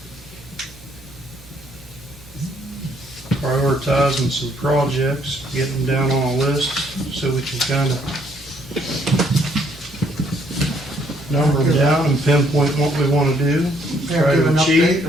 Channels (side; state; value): both; normal; correlation 0.67